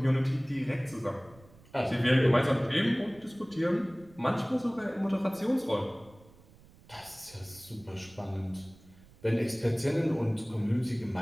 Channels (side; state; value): right; noise; rumble, 25 dB below the sound